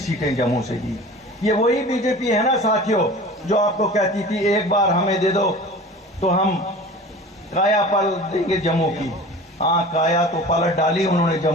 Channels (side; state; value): both; normal; correlation 0.39